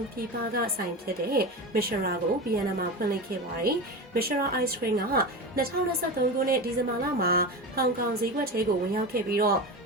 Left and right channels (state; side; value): normal; both; correlation 0.24